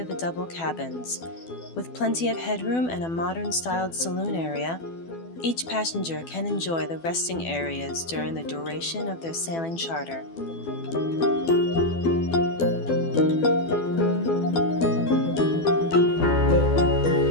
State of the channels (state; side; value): late; right; 12 ms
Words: the double cabins. With plenty of headroom and a modern-styled saloon area, each passenger can enjoy the resting areas during the duration of their sailing charter.